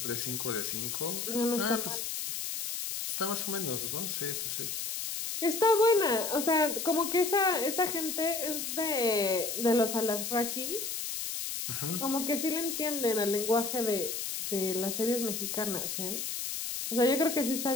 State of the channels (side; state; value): left; noise; hiss, 4 dB below the sound